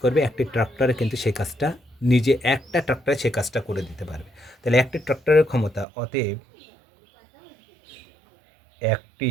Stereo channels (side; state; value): left; drops out; at 5.9 s